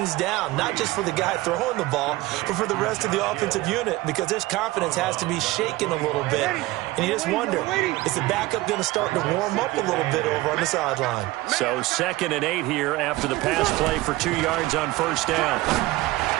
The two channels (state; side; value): quieter; left; 18.9 dB